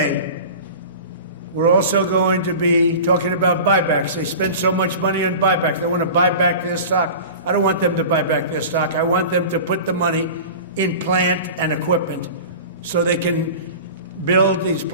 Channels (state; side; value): inverted; both; correlation -0.35